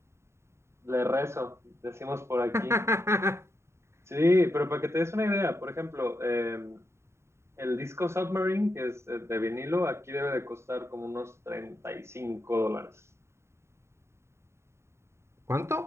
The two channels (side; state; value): left; late; 0.13 ms